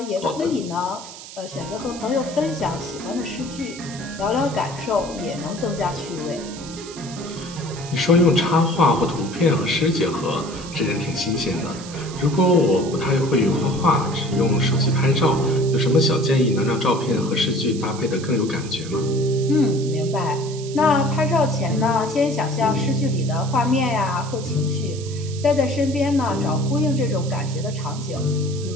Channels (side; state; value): right; noise; hiss, 15 dB below the sound